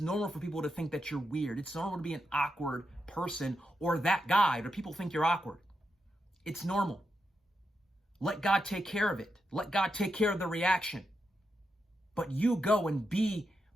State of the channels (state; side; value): normal; both; correlation 0.85